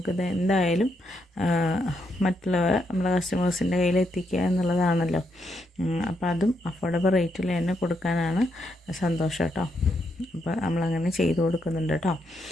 എന്തായാലും മറ്റുള്ളവർ നമ്മുടെ കസ്റ്റമേഴ്സിൻ്റെ കയ്യിൽ എത്തിക്കുക എന്നുള്ളതാണല്ലോ. അപ്പോൾ അതും അഫോർഡബിൾ റേറ്റിൽ തന്നെ കൊടുക്കാനാണ് സന്തോഷം കേട്ടോ. അപ്പോൾ നമ്മളങ്ങനെ ചെയ്ത് കൊടുക്കുന്നുണ്ട് കേട്ടോ.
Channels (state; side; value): normal; both; correlation 0.79